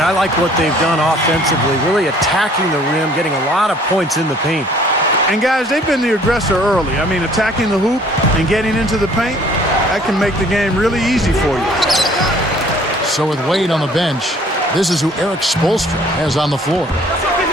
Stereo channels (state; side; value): normal; both; correlation 0.56